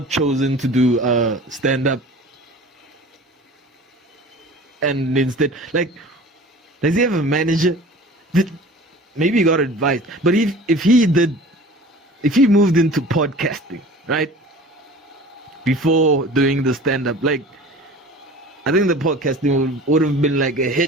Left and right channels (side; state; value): both; normal; correlation 0.42